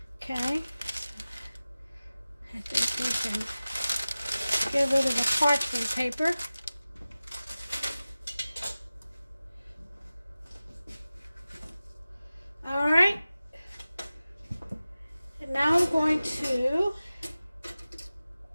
Okay. I think we can get rid of the parchment paper. All right. And now I'm going to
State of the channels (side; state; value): both; inverted; correlation -0.96